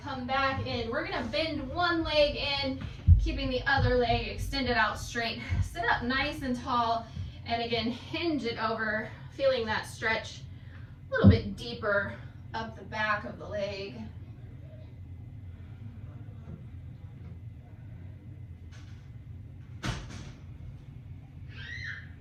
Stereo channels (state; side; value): identical; both; correlation 1.00